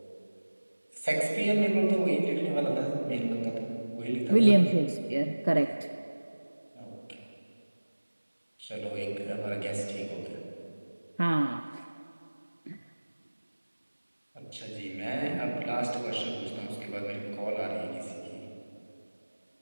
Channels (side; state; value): both; inverted; correlation -1.00